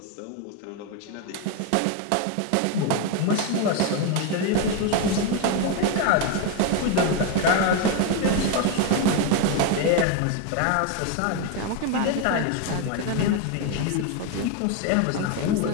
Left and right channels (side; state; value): both; different; correlation 0.02